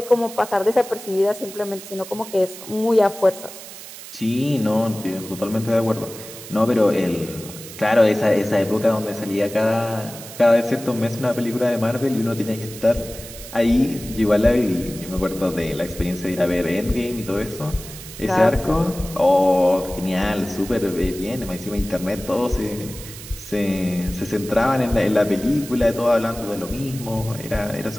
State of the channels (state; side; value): noise; right; hiss, 14 dB below the sound